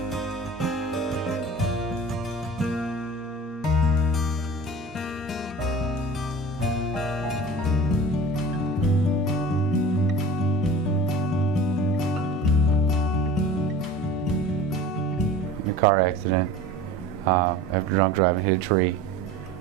Car accident after drunk driving, hit a tree,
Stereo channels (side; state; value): both; normal; correlation 0.39